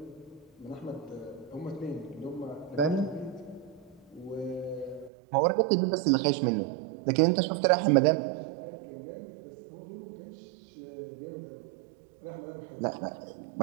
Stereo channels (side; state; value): left; drops out; at 5.1 s